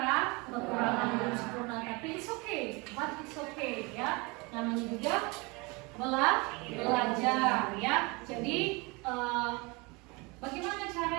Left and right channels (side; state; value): left; quieter; 27.1 dB